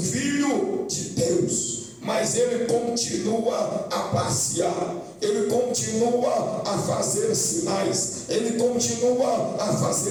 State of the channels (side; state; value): both; identical; correlation 1.00